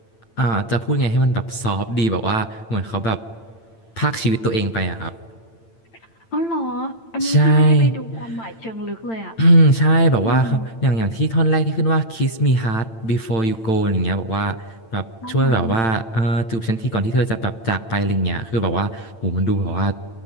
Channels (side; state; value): right; late; 8.9 ms